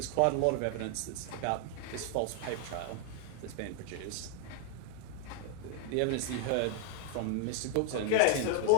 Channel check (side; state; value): both; different; correlation 0.00